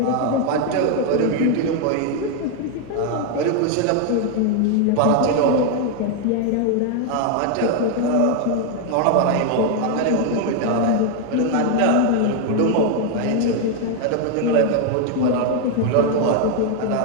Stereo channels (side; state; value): both; different; correlation 0.00